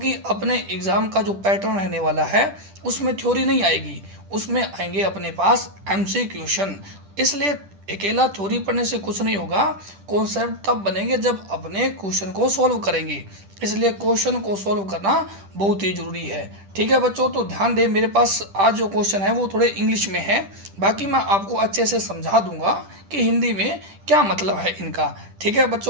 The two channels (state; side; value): late; left; 10 ms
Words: अपने एग्ज़ाम का जो पैटर्न रहने वाला है उसमें थ्योरी नहीं आएगी, उसमें आएंगे अपने पास एमसी क्वेश्चन। इसलिए अकेला थ्योरी पढ़ने से कुछ नहीं होगा, कॉन्सेप्ट तब बनेंगे जब अपने क्वेश्चन को सॉल्व करेंगे। इसलिए क्वेश्चन को सॉल्व करना बहुत ही ज़रूरी है। ठीक है बच्चों, तो ध्यान दें, मेरे पास आज जो क्वेश्चन है वो थोड़े इंग्लिश में है, बाकी मैं आपको अच्छे से समझा दूंगा कि हिंदी में क्या मतलब है इनका। ठीक है